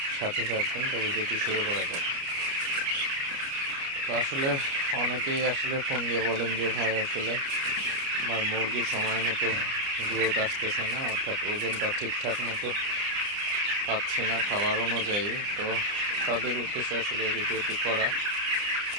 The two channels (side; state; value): left; late; 29 ms